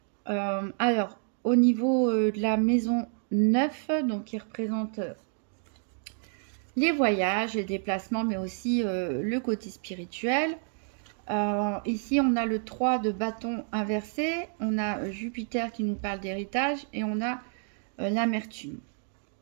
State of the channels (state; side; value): silent; left; 58 dB below the other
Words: Alors, au niveau de la maison 9, donc qui représente les voyages, les déplacements, mais aussi le côté spirituel. Ici, on a le 3 de bâton inversé, on a Jupiter qui nous parle d'héritage et on a l'amertume.